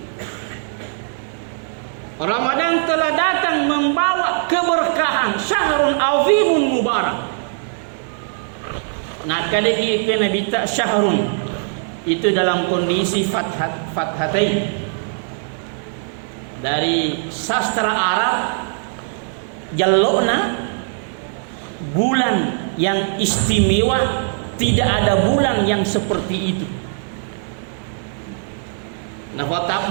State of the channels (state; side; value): silent; left; digital silence